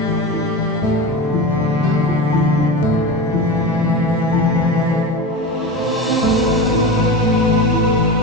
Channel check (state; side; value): normal; both; correlation 0.25